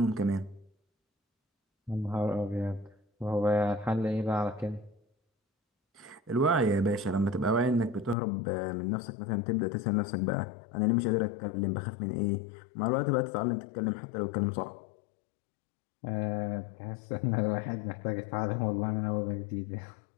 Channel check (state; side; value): drops out; right; at 8.2 s